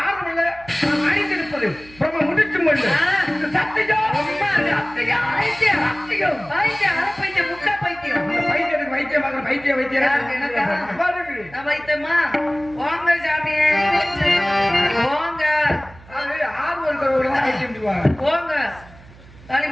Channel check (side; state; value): right; noise; hum, 22 dB below the sound